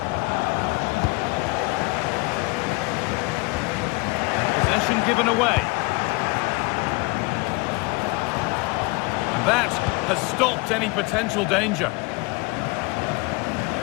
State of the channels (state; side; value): quieter; right; 26.2 dB